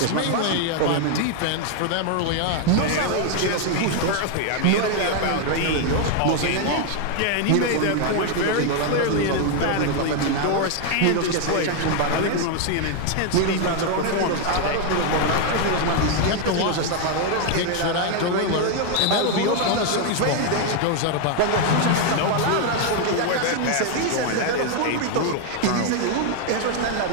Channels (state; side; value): different; both; correlation 0.01